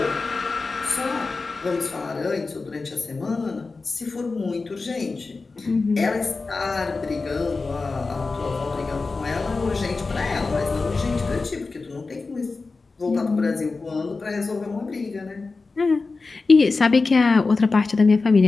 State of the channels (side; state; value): right; quieter; 3.9 dB